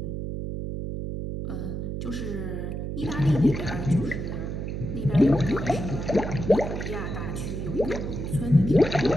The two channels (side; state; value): right; noise; hum, 4 dB below the sound